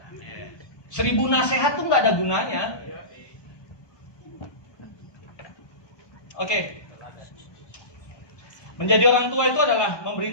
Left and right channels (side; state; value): right; late; 1.2 ms